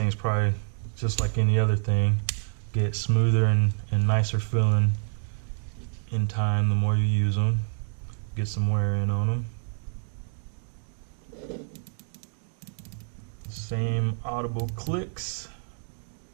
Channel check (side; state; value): left; silent; digital silence